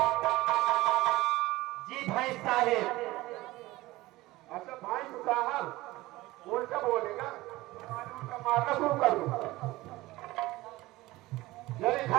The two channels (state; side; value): quieter; left; 18.8 dB